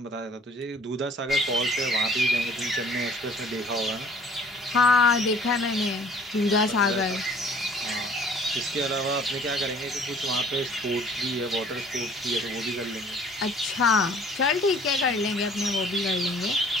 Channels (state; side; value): normal; both; correlation 0.53